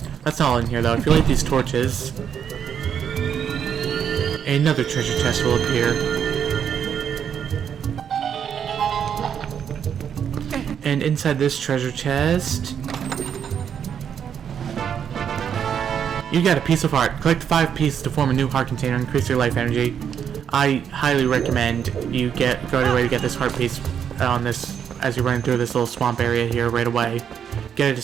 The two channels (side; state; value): left; quieter; 8.2 dB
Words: That's not all in here though. If you light these torches, another treasure chest will appear. And inside this treasure chest, you got a piece of heart. Collect 5 pieces to form a new heart container and increase your life energy. I highly recommend you go out of your way to get this heart piece on this as you're running through this little swamp area here right away. Get it as